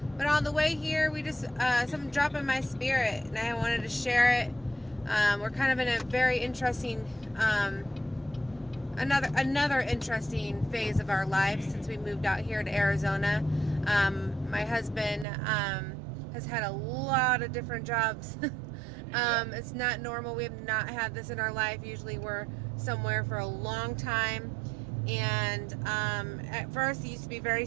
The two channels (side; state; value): left; drops out; at 15.2 s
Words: But on the way here, we just something dropped in my spirit, and I wanted to share it. We're kind of in a very interesting, another interesting phase of our life since we moved out here to Arizona. My husband has had a lot of different jobs. It's not normal. We have not had this in our life. Usually we're somewhere for a long time. And at first it used to be very